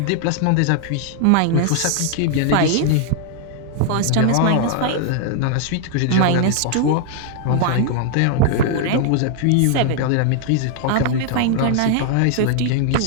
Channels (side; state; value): both; different; correlation 0.00